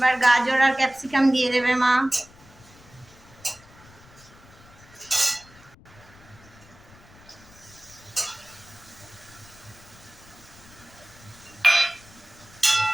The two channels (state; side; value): noise; left; rumble, 24 dB below the sound